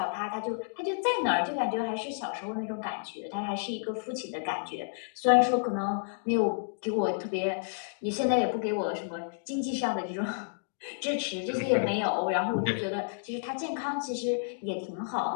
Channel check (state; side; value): silent; right; digital silence